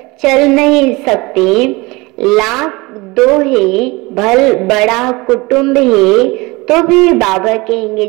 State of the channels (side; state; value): left; quieter; 23.7 dB